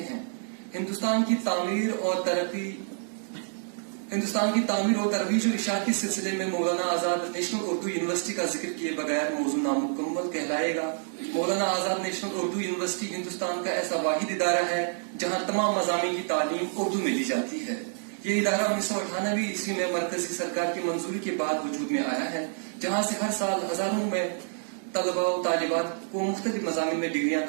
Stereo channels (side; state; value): left; silent; digital silence